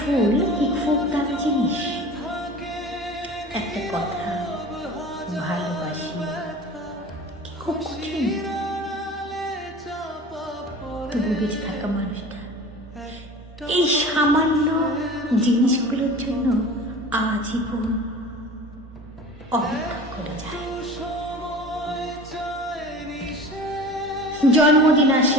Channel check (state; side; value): normal; both; correlation 0.38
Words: কি খুব দামি জিনিস, একটা কথা ভালোবাসি কি খুব কঠিন। তবু বেঁচে থাকা মানুষটা এই সামান্য জিনিসগুলোর জন্য আজীবন অপেক্ষা করে যায়। জন্মদিন